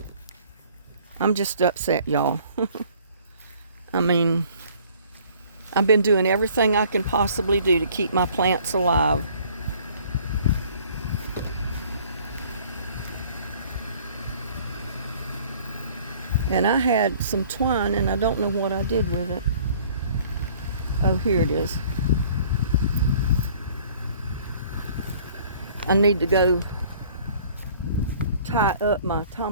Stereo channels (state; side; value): inverted; both; correlation -0.54